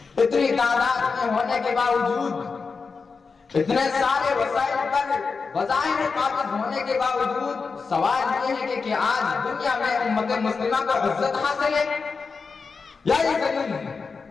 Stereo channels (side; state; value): right; quieter; 4.8 dB